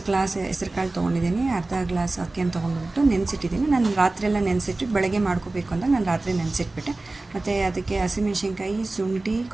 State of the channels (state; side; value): quieter; left; 3.1 dB